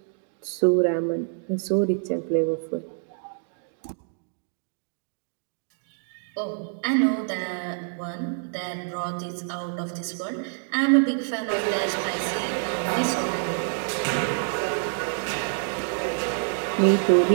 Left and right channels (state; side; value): silent; left; digital silence